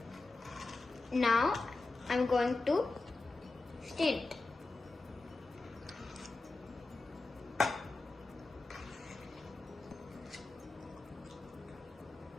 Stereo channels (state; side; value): quieter; right; 3.4 dB